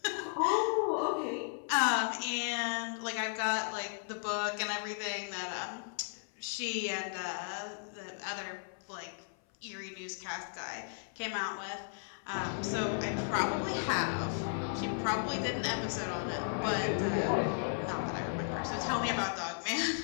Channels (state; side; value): silent; right; 54 dB below the other